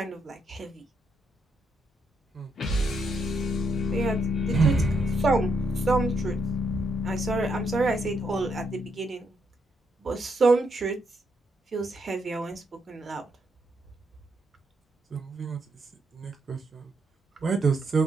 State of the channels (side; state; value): both; normal; correlation 0.78